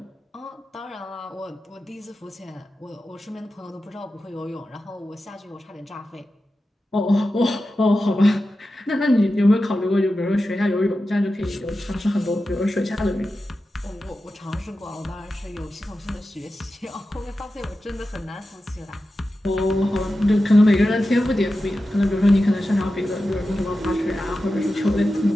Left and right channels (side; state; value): both; normal; correlation 0.92